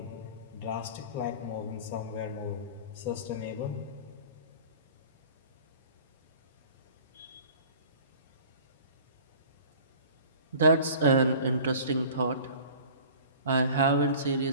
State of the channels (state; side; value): inverted; both; correlation -0.44